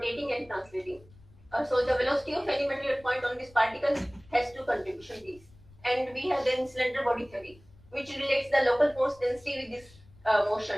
and translating. So the velocity of any material point on this particle has two contribution V's. And we have then cylinder body theory, which relates the local force density with this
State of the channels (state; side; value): noise; left; rumble, 26 dB below the sound